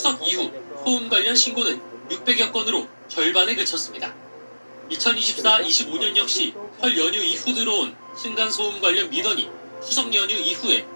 이후 소음 관련 신고는 600여 건으로 절반에 그쳤습니다. 2024-25년 역시 설 연휴 이후 들어온 층간소음 관련 민원이 추석 연휴 이후에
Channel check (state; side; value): inverted; both; correlation -1.00